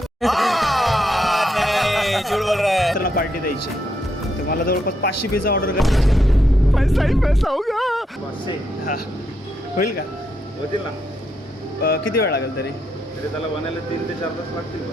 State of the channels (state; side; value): normal; both; correlation 0.79